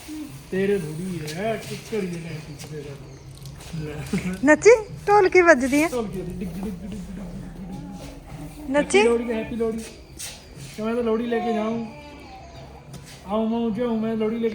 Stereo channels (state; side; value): identical; both; correlation 1.00